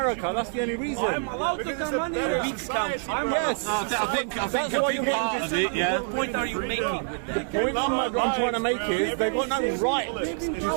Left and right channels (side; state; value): left; silent; 61 dB below the other